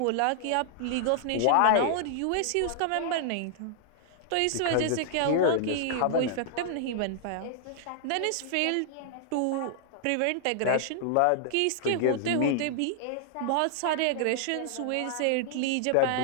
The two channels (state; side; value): different; both; correlation -0.01